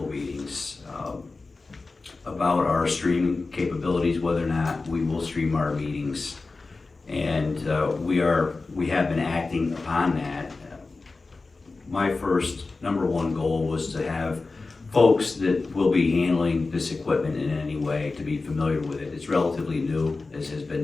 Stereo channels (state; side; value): quieter; right; 3.7 dB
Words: meetings, about our streaming capabilities, whether or not we will stream our meetings. And we have been acting upon that. My first, number one goal was to have folks that will be handling this equipment in any way to be familiar with it. It's relatively new, as has been